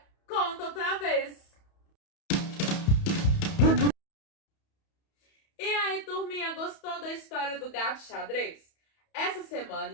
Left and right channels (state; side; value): late; right; 31 ms